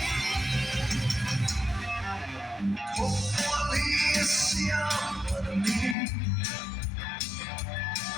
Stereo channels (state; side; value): drops out; right; at 6.0 s